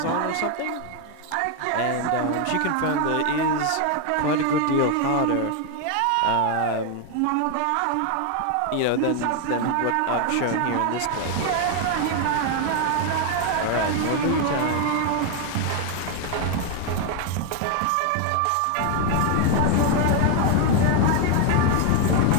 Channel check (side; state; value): both; different; correlation 0.01